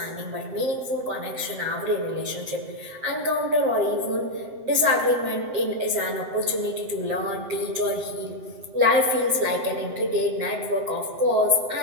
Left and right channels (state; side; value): late; left; 7.9 ms